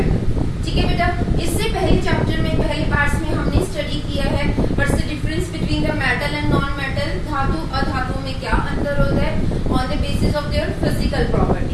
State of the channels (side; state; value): both; identical; correlation 1.00